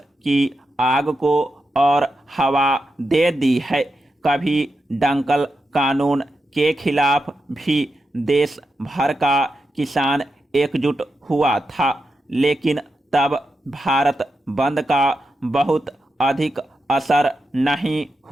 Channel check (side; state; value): both; normal; correlation 0.88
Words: की आग को और हवा दे दी है। कभी डंकल कानून के खिलाफ भी देश भर का किसान एकजुट हुआ था, लेकिन तब भारत बंद का बहुत अधिक असर नहीं